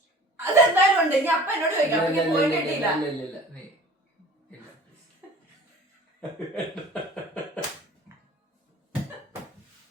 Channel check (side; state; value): both; normal; correlation 0.46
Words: അതെന്തായാലും ഉണ്ട്. ഇനി അപ്പ എന്നോട് ചോദിക്കാം.